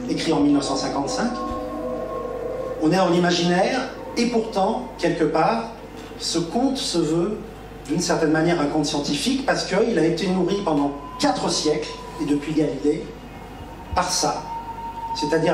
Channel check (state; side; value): identical; both; correlation 1.00